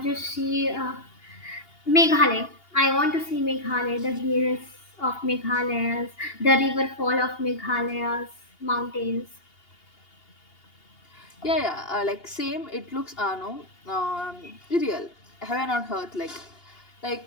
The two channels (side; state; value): right; late; 2.8 ms